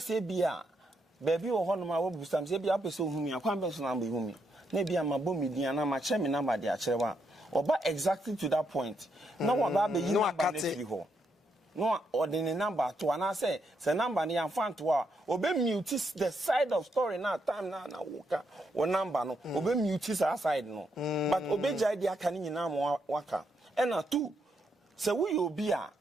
bia baby wo hono ma wo busam say bia pese ohumi akwan be so na be ohumi na bia ma bo media na ma che me na ba de acherewa oba exactly to that point no one ba be no akate ho no ordinary number to ana say number ni amfan to a obe mute the side of story na time na woka o number no obe mute that side no but obe jai dia aka ni nyina mo waka ena 2 say we obi a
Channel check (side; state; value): both; normal; correlation 0.79